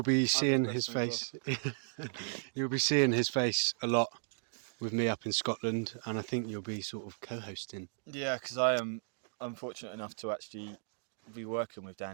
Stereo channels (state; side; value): silent; left; digital silence